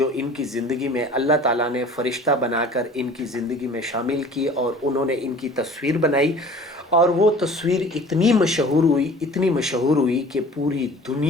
ان کی زندگی میں اللہ تعالیٰ نے فرشتہ بنا کر ان کی زندگی میں شامل کی اور انہوں نے ان کی تصویر بنائی اور وہ تصویر اتنی مشہور ہوئی کہ پوری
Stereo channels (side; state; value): both; normal; correlation 0.46